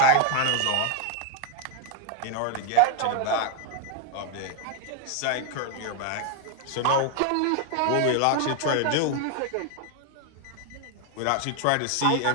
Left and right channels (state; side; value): different; both; correlation 0.00